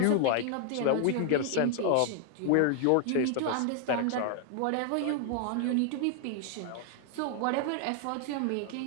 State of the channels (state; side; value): different; both; correlation 0.00